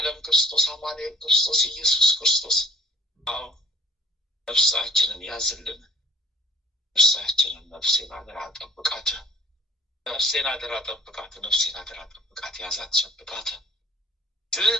ክርስቶስ አማኑኤል ክርስቶስ ኢየሱስ ክርስቶስ ነፍሳችንን ያዝልን። ነፍሳችንን ነፍሴን አደራ ጠብቃት፣ ነፍሴን አደራ ጠብቃት፣ ነፍሴን አደራ ጠብቃት፣ ያዛት ሸብቃት።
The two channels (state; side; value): normal; both; correlation 0.59